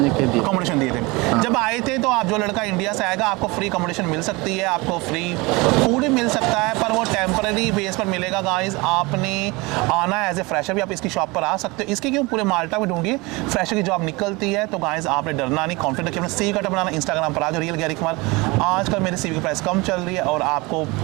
कह दिया। अकोमोडेशन दिए थे जब आए थे। तो आप जो लड़का इंडिया से आएगा आपको फ्री अकोमोडेशन मिल सकती है, आपको फ्री फूड भी मिल सकता है, पर वो टेम्पररी बेस पर मिलेगा गाइस। आपने आना है एज ए फ्रेशर भी, आप इसकी शॉप पर आ सकते हो। इसके क्यों पूरे माल्टा में ढूंढिए, फ्रेशर की जॉब निकलती है। तो गाइस आपने डरना नहीं, कॉन्फिडेंट रखिए, अपना सीवी कार्ड बनाना। इंस्टाग्राम पर आज रियल गैरी कुमार। आजकल मेरे सीवी की प्राइस कम चल रही है और आपको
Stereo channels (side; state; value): left; quieter; 24.5 dB